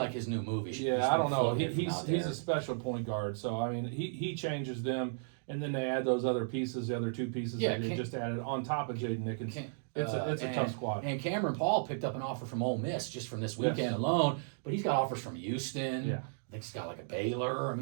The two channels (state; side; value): silent; left; digital silence